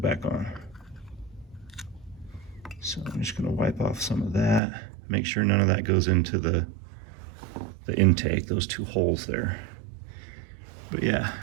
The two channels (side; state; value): left; drops out; at 4.6 s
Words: back on. So I'm just gonna wipe off some of that. Make sure none of that goes into the intake, those two holes there. But yeah,